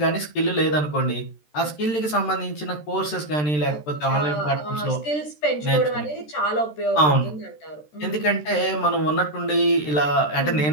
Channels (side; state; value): right; late; 13 ms